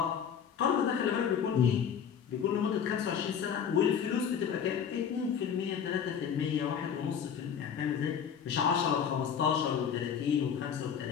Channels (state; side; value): quieter; right; 7.7 dB